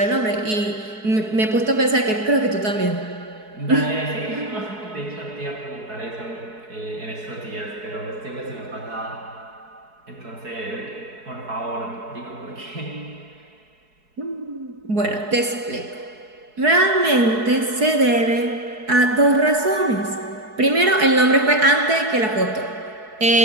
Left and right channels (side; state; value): left; late; 4.7 ms